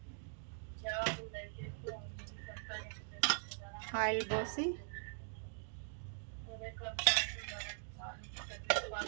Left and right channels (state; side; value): silent; left; digital silence